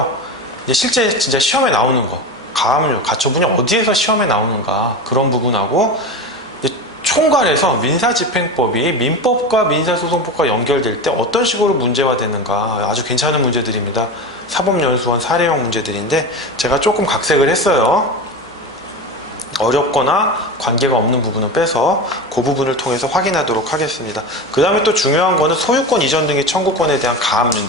이제 실제 진짜 시험에 나오는 거, 가압류, 가처분이 어디에서 시험에 나오는가 그런 부분하고 총괄해서 민사집행법이 민법과 민사소송법과 연결될 때 어떤 식으로 문제화되는가 아주 괜찮은 문제들입니다. 사법연수원 사례형 문제들인데 제가 조금 각색을 했어요. 어렵거나 관계가 없는 부분은 빼서 그 부분을 통해서 확인하도록 하겠습니다. 그 다음에 또 중요한 거는 소유권 이전 등의 청구권에 대한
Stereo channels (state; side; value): normal; both; correlation 0.25